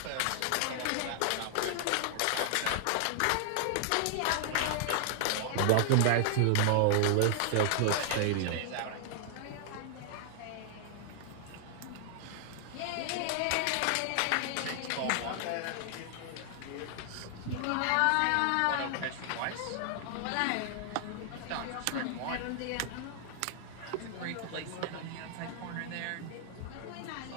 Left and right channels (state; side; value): different; both; correlation 0.00